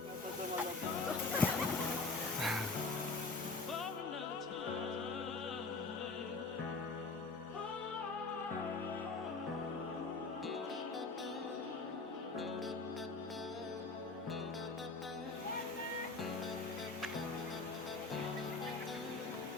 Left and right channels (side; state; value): right; quieter; 3.8 dB